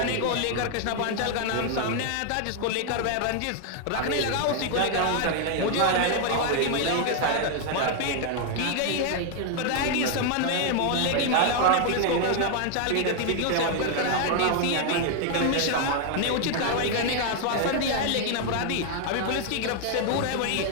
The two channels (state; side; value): different; both; correlation 0.00